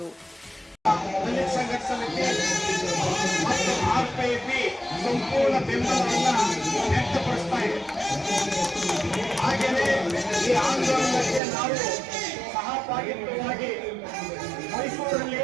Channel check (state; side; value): drops out; left; at 11.4 s